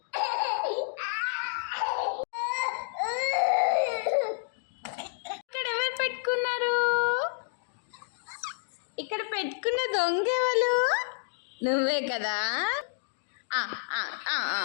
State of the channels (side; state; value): right; silent; digital silence